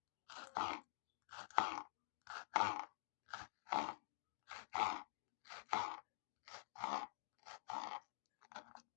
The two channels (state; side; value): silent; right; digital silence